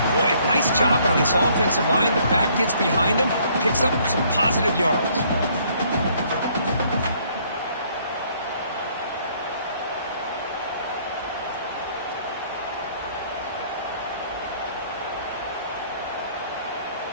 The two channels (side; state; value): both; inverted; correlation -0.63